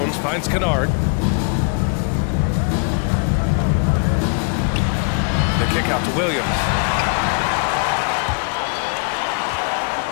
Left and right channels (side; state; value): right; quieter; 37.8 dB